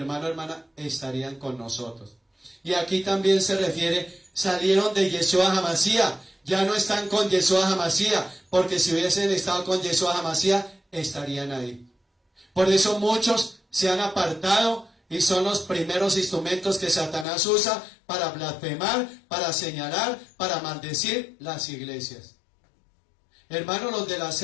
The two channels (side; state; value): right; drops out; at 17.2 s